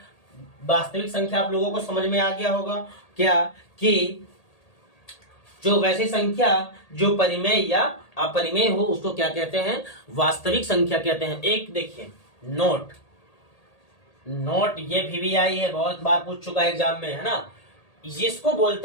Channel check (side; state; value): right; late; 1.8 ms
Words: वास्तविक संख्या आप लोगों को समझ में आ गया होगा क्या, कि जो वैसी संख्या जो परिमेय या अपरिमेय हो उसको क्या कहते हैं, वास्तविक संख्या कहते हैं। एक देखिए नोट, ये VVI है, बहुत बार पूछ चुका है एग्जाम में, है ना। जिसको